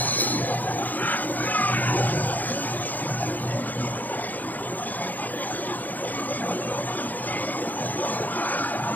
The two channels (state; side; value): late; right; 0.083 ms